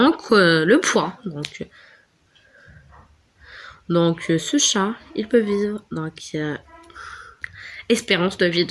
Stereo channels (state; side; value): identical; both; correlation 1.00